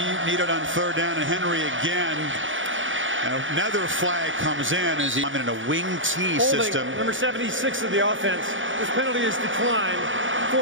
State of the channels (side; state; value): left; late; 0.56 ms